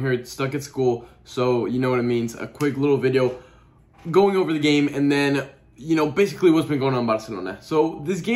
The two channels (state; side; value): identical; both; correlation 1.00